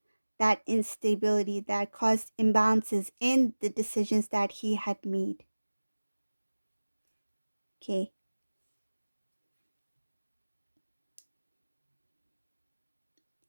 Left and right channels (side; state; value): both; inverted; correlation -1.00